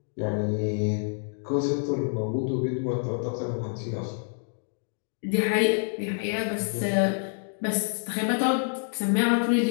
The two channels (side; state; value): right; silent; digital silence